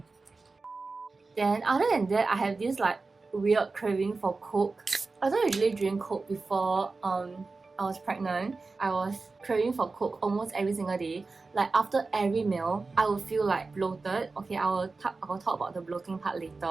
Then other than that, I have this like weird craving for Coke. I don't usually drink Coke before I was pregnant. I was craving for Coke almost every single day. Like after every meal, I would feel like bloated. Okay, I will talk about the bloating part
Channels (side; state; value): left; quieter; 3.9 dB